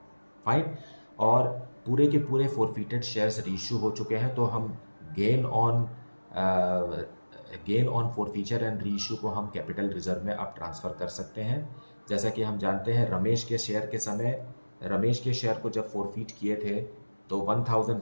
फाइन, और पूरे के पूरे फॉरफिटेड शेयर्स रीइश्यू हो चुके हैं, तो हम gain on forfeiture and reissue को हम कैपिटल रिजर्व में अब ट्रांसफ़र कर सकते हैं। जैसा कि हम जानते हैं रमेश के शेयर को जब फॉरफिट किए थे तो 1000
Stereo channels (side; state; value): both; inverted; correlation -1.00